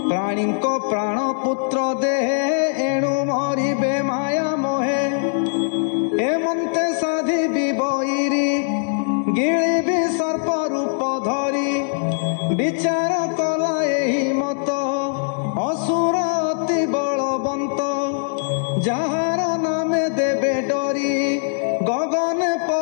ପ୍ରାଣୀଙ୍କ ପ୍ରାଣ ପୁତ୍ର ଦେହେ ଏଣୁ ମରିବେ ମାୟା ମୋହେ ଏମନ୍ତେ ସାଧିବି ବୈରୀ ଗିଳିବି ସର୍ପ ରୂପ ଧରି ବିଚାର କଲା ଏହି ମତ ଅସୁର ଅତି ବଳବନ୍ତ ଯାହାର ନାମେ ଦେବେ ଡରି ଗଗନେ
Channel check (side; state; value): right; silent; digital silence